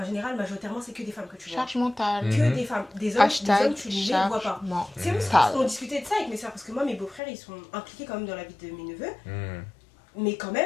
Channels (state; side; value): drops out; right; at 7.2 s